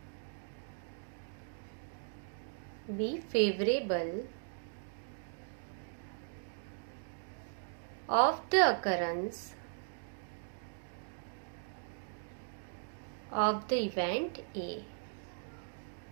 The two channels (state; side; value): silent; left; digital silence